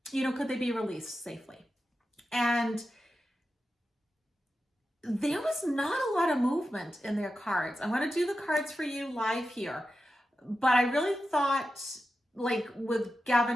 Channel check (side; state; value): both; normal; correlation 0.91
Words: you know, could they be released safely? And there was not a lot of movement in their cards. I'm going to do the cards for you live here. But I really thought, like, with